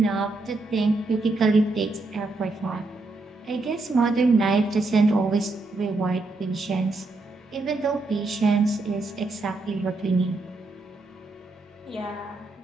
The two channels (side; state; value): left; quieter; 3.2 dB